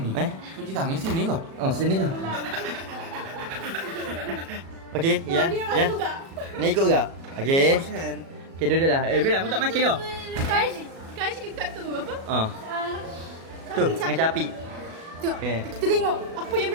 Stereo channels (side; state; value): left; late; 36 ms